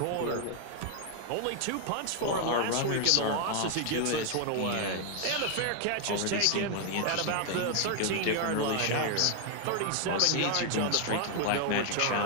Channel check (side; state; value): both; different; correlation 0.00